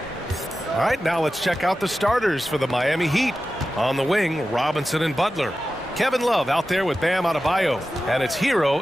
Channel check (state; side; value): normal; both; correlation 0.93